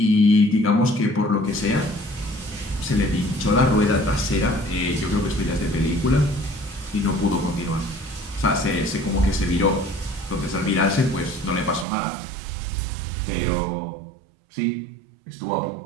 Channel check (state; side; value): drops out; left; at 11.9 s